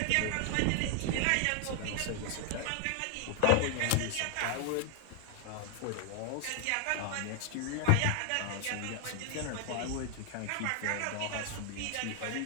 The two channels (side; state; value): both; different; correlation 0.00